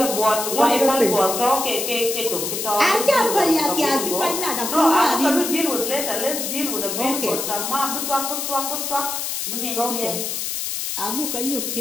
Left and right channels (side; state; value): left; noise; hiss, 3 dB below the sound